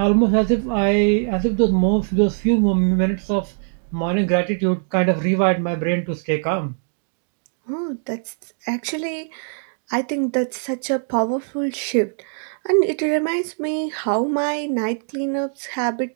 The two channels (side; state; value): left; silent; 64 dB below the other